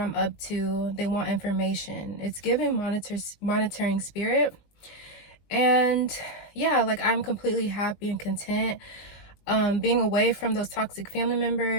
up to. They want information. It's giving monitoring spirit. And yeah, like I'm completely happy and content being away from those toxic family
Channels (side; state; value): right; late; 20 ms